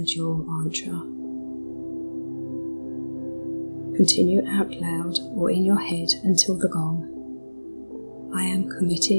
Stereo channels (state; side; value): inverted; both; correlation -1.00